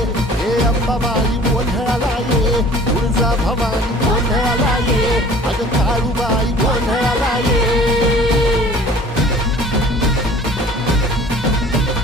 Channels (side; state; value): both; normal; correlation 0.48